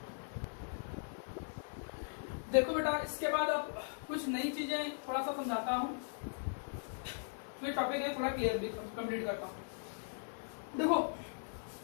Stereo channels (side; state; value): right; silent; 52 dB below the other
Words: देखो बेटा इसके बाद अब कुछ नई चीजें थोड़ा सा समझाता हूँ, फिर टॉपिक है थोड़ा क्लियर भी कंप्लीट करता हूँ। देखो